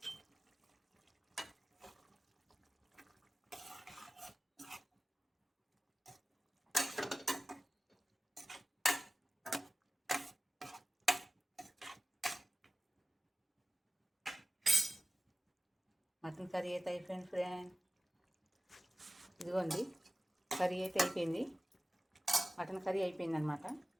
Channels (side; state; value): both; normal; correlation 0.95